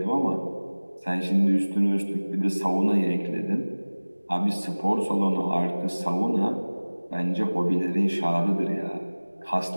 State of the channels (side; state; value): both; inverted; correlation -1.00